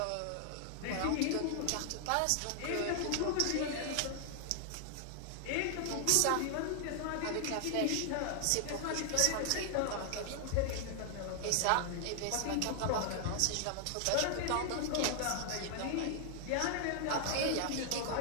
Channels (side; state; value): both; different; correlation 0.00